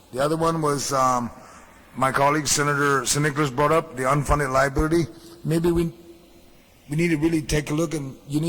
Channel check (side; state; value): both; identical; correlation 1.00